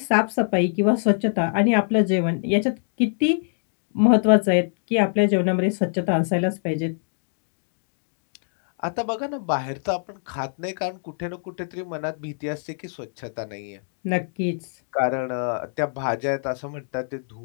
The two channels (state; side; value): silent; right; 62 dB below the other